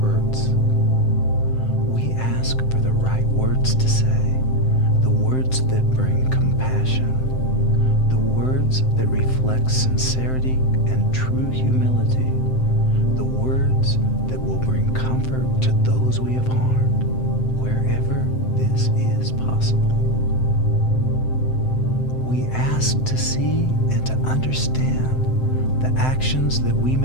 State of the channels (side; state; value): right; late; 7.7 ms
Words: We ask for the right words to say, the words that bring compassion, the words that reflect sincerity and true humility, the words that will bring comfort to those we have harmed, wherever this is possible. We ask to see and to understand the actions that we